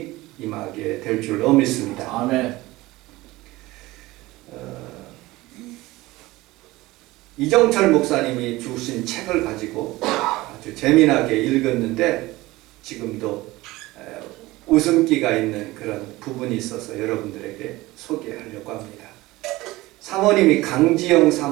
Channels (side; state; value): left; quieter; 19.3 dB